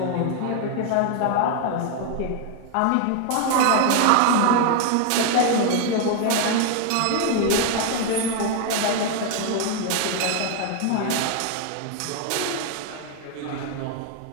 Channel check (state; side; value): different; both; correlation 0.01